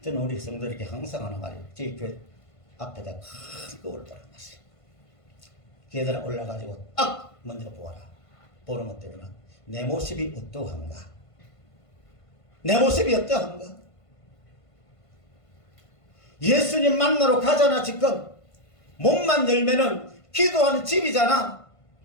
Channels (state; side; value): late; right; 1.5 ms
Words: 저는 우리 성도들에게 항상 하는 말이에요. 저희 교회 앞에다 큰 거울을 달아놨어요. 계단에 올라가지고 딱 먼저 보아라. 보는 것 때문에 내 모습이 어떠한가? 내 모습이 어떠한가? 예수님 만나러 가잖아. 지금 몸만 열면은 기도하는 집이잖아.